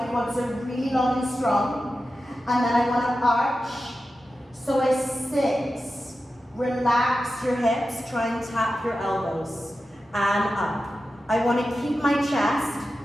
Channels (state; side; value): normal; both; correlation 0.92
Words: quads are really long and strong. And then I want to arch. So I sit, relax your hips, try and tap your elbows, and up. I want to keep my chest